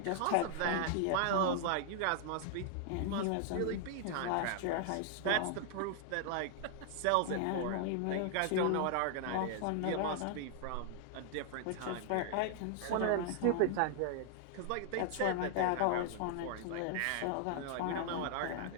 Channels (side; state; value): both; different; correlation 0.00